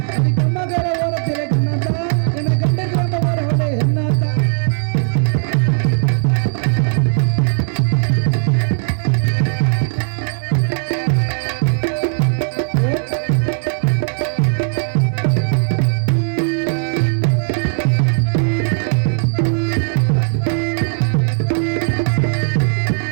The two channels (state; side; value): silent; left; digital silence